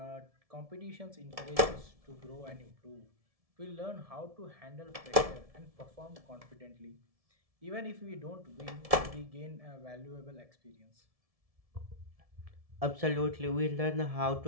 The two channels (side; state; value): left; late; 1.7 ms